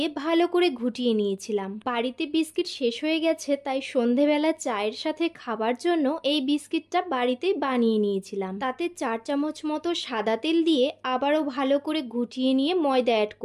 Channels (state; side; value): identical; both; correlation 1.00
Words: ভালো করে ঘুটিয়ে নিয়েছিলাম। বাড়িতে বিস্কিট শেষ হয়ে গেছে, তাই সন্ধেবেলা চায়ের সাথে খাবার জন্য এই বিস্কিটটা বাড়িতেই বানিয়ে নিয়েছিলাম। তাতে 4 চামচ মতো সাদা তেল দিয়ে আবারও ভালো করে ঘুটিয়ে নিয়ে ময়দা অ্যাড